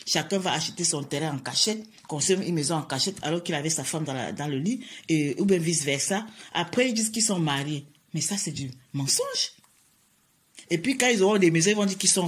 Chacun va acheter son terrain en cachette, construire une maison en cachette alors qu'il avait sa femme dans le lit, ou bien vice-versa. Après, ils disent qu'ils sont mariés. Mais ça, c'est du mensonge. Et puis, quand ils auront des maisons, ils vont dire qu'ils sont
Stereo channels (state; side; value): identical; both; correlation 1.00